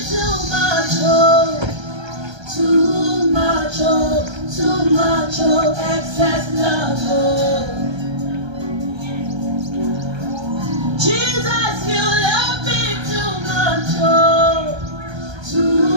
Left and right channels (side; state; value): left; late; 1.3 ms